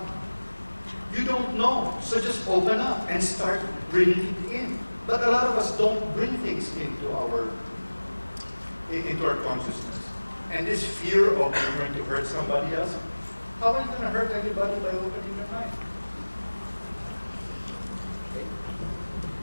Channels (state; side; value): inverted; both; correlation -1.00